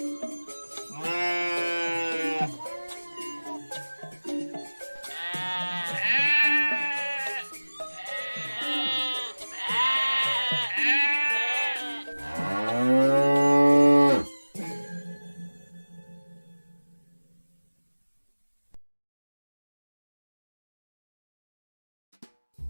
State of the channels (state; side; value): inverted; both; correlation -1.00